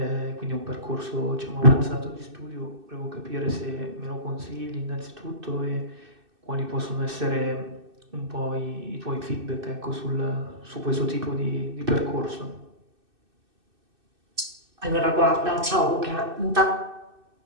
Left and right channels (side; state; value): left; late; 2.6 ms